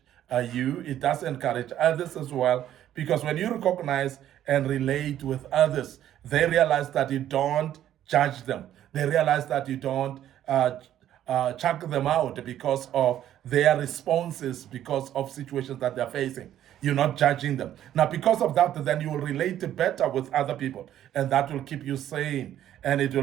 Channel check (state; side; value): quieter; left; 11.6 dB